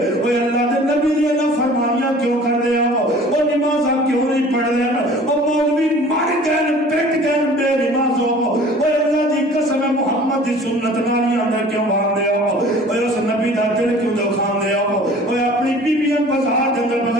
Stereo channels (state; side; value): normal; both; correlation 0.47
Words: اوے اللہ دے نبی دی فرمانیاں کیوں کر دے او نمازاں کیوں نہیں پڑھ دے او مولوی مر گئے پٹ گئے بے نمازوں اوے اللہ دی قسم محمد دی سنت نالیاں اندر کیوں باندھ دے اوے اس نبی دا دل کیوں دکھان دے اوے اپنی بیویاں بازار دے اندر